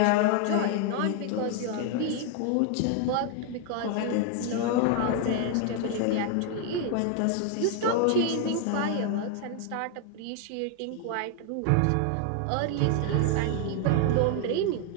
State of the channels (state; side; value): different; both; correlation 0.01